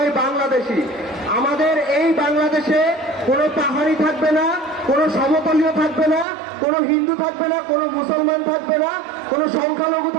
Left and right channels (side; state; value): left; drops out; at 6.2 s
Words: বাংলাদেশী। আমাদের এই বাংলাদেশে কোনো পাহাড়ি থাকবে না, কোনো সমতলীয় থাকবে না, কোনো হিন্দু থাকবে না, কোনো মুসলমান থাকবে না, কোনো সংখ্যালঘু